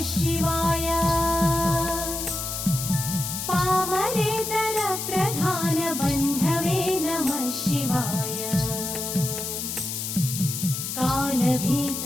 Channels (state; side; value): noise; left; hiss, 4 dB below the sound